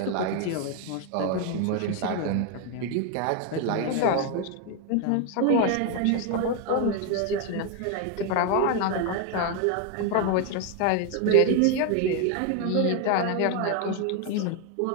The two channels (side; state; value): both; different; correlation 0.01